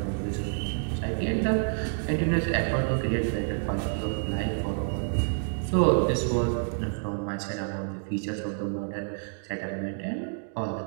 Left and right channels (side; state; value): left; silent; digital silence